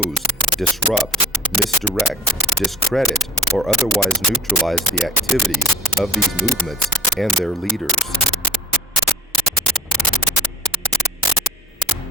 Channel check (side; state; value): both; normal; correlation 0.56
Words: disrupt, misdirect, discredit, or otherwise neutralize the activities of these movements and their leaders.